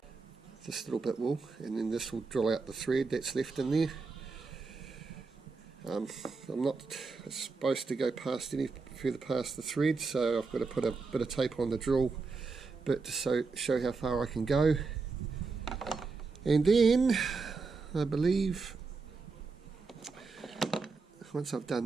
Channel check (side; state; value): left; quieter; 4.3 dB